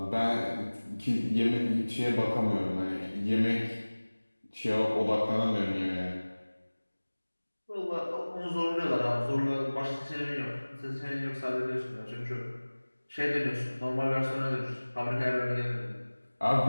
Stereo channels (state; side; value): inverted; both; correlation -1.00